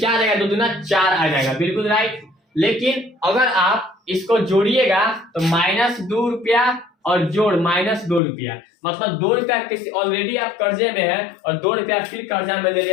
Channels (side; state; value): right; drops out; at 8.2 s